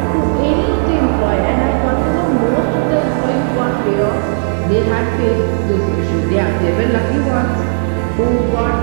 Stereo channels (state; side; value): silent; left; digital silence